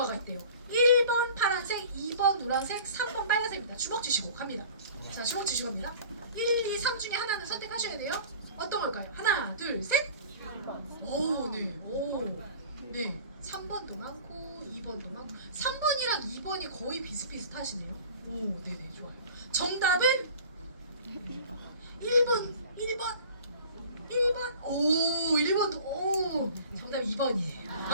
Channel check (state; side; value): inverted; both; correlation -0.44